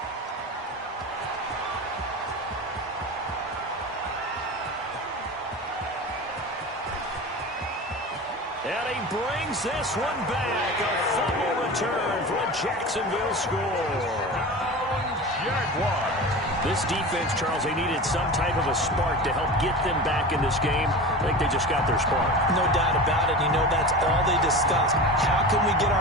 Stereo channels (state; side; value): normal; both; correlation 0.31